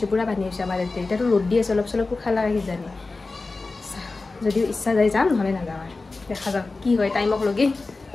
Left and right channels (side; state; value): right; quieter; 3.6 dB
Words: পুৰা পানী হৈছে আমাৰ ইয়াতে এতিয়াতো ৰ'দ দি আছে অলপ চলপ পোখা লাগে কিজানি যদিও ইচ্ছা যায় যাম নহ'লে নাযাওঁ আৰু দেখা যাওক কি হয় টাইমক লগে